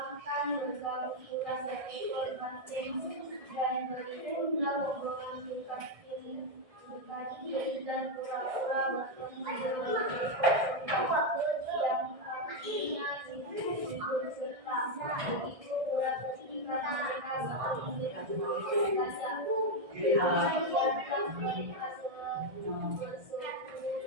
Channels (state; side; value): late; left; 1.6 ms